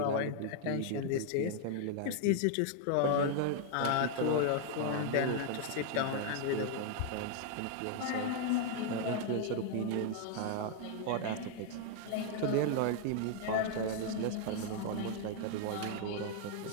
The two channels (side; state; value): both; different; correlation 0.00